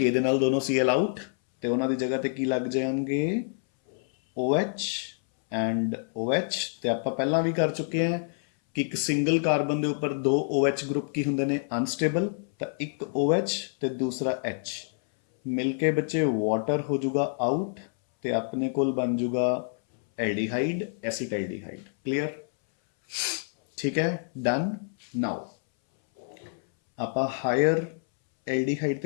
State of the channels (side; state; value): right; silent; 60 dB below the other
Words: ਦੇ ਨਾਲ ਦੋਨੋਂ Cl ਆਊਟ, ਤੇ ਉਹਨਾਂ ਦੀ ਜਗ੍ਹਾ ਤੇ ਕੀ ਲੱਗ ਜਾਣਗੇ, OH ਐਂਡ OH। ਤੇ ਆਪਾਂ ਪਹਿਲਾਂ ਵੀ ਕਰ ਚੁੱਕੇ ਹਾਂ ਕਿ ਇੱਕ ਸਿੰਗਲ ਕਾਰਬਨ ਦੇ ਉੱਪਰ 2 OH ਗਰੁੱਪ ਕੀ ਹੁੰਦੇ ਨੇ, ਅਨਸਟੇਬਲ। ਤਾਂ ਇੱਕ OH ਤੇ ਦੂਸਰਾ H ਮਿਲ ਕੇ ਬੱਚੇ ਵਾਟਰ ਹੋ ਜਾਊਗਾ ਆਊਟ, ਤੇ ਆਪਣੇ ਕੋਲ ਬਣ ਜਾਊਗਾ ਐਲਡੀਹਾਈਡ, ਐਸੀਟਾਲਡੀਹਾਈਡ। ਕਲੀਅਰ, ਠੀਕ ਹੈ, ਡਨ। ਨਾਓ ਆਪਾਂ ਹਾਇਰ ਐਲਡੀਹਾਈਡ